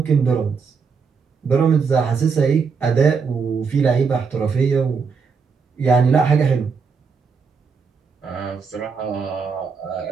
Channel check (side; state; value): left; quieter; 5.4 dB